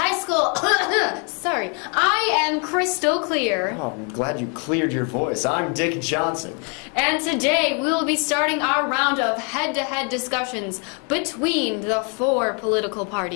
School. Sorry, I am Crystal Clear. Oh, I'm glad you cleared your voice. I'm Dick Johnson. And today we will be starting our round of head-to-head discussions between the four political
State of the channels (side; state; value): right; quieter; 37.0 dB